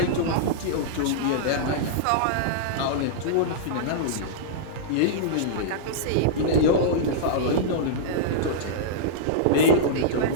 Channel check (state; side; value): different; both; correlation -0.03